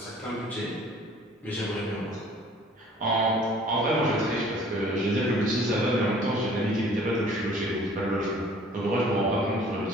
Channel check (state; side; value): normal; both; correlation 0.53